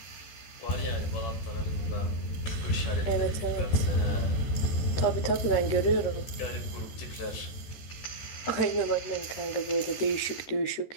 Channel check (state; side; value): late; right; 13 ms